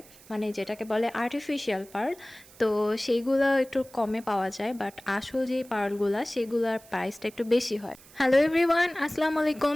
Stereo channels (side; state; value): right; noise; hiss, 23 dB below the sound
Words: মানে যেটাকে বলে আর্টিফিশিয়াল পার্ল। তো সেইগুলো একটু কমে পাওয়া যায়, বাট আসল যে পার্লগুলো সেগুলোর প্রাইসটা একটু বেশি হয়। হ্যালো এভরিওয়ান, আসসালামু আলাইকুম,